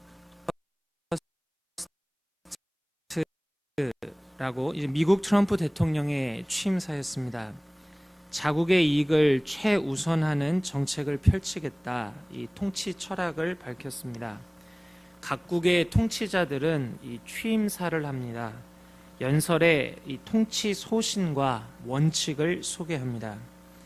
라고 이제 미국 트럼프 대통령의 취임사였습니다. 자국의 이익을 최우선하는 정책을 펼치겠다, 이 통치 철학을 밝혔습니다. 각국의 통치자들은 이 취임사를 합니다. 연설에 이 통치 소신과 원칙을 소개합니다.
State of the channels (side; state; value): both; identical; correlation 1.00